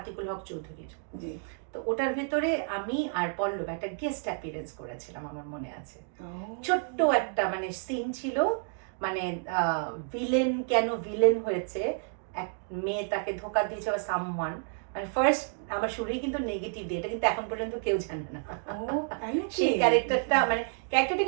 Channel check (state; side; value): silent; left; 56 dB below the other